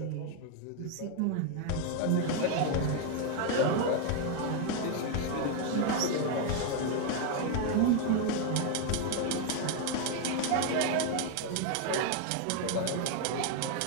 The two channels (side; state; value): both; different; correlation 0.01